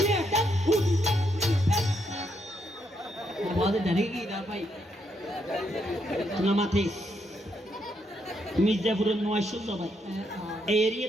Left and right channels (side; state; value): both; normal; correlation 0.77